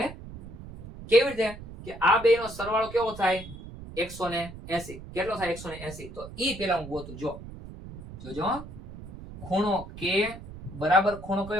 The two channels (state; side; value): noise; right; rumble, 13 dB below the sound